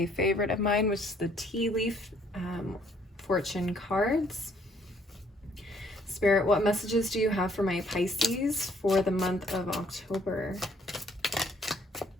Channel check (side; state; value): both; normal; correlation 0.64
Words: favorite of mine, which is the Tea Leaf Fortune cards. Spirit, what messages do you have for my Pisces for the month of October?